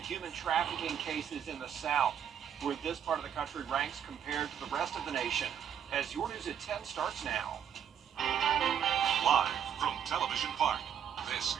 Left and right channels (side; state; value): left; quieter; 8.7 dB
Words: human trafficking cases in the South, where this part of the country ranks compared to the rest of the nation. As your News at 10 starts now. Live from Television Park, this